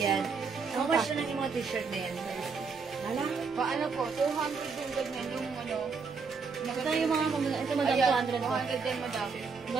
How much na lang yung mga t-shirt na yan? Hala? Paano po? 200 yung ganyan yung ano. Ito yung mga ito madam Ayan, 200 po. 200 din madami.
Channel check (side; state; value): left; quieter; 5.1 dB